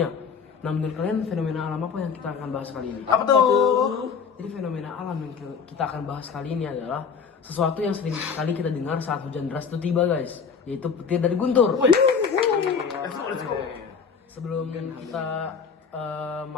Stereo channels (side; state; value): right; quieter; 6.1 dB